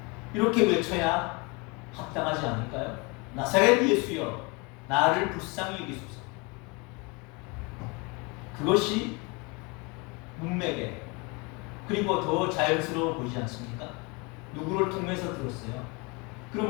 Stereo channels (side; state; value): right; quieter; 28.6 dB